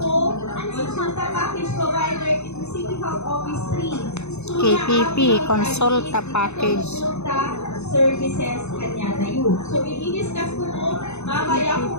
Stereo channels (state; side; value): late; right; 0.81 ms